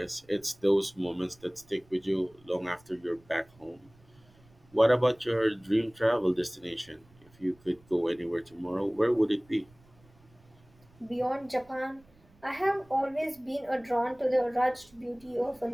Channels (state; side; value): noise; right; rumble, 29 dB below the sound